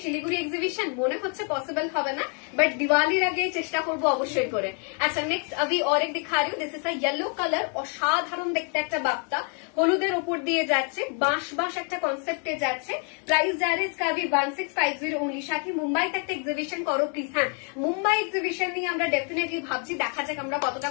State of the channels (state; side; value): quieter; right; 39.8 dB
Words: শিলিগুড়ি এক্সিবিশন মনে হচ্ছে পসিবল হবে না, বাট দিওয়ালির আগে চেষ্টা করবো অবশ্যই করে। আচ্ছা নেক্সট আমি অরেক দিখা রি, this is a yellow colour, অসাধারণ দেখতে একটা বাপ্তা, হলুদের উপর দিয়ে যাচ্ছে, বাঁশ বাঁশ একটা কনসেপ্টে যাচ্ছে। প্রাইস যা রে इसका भी 1650 ओनली। সাথী মুম্বাইতে একটা এক্সিবিশন করো প্লিজ। হ্যাঁ মুম্বাই এক্সিবিশন নিয়ে আমরা ডেফিনেটলি ভাবছি, দেখা যাক আমরা কতটা